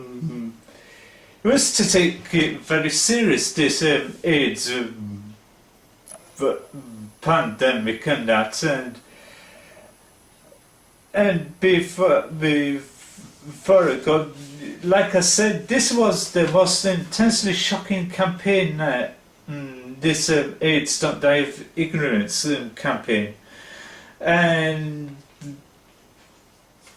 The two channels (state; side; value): identical; both; correlation 1.00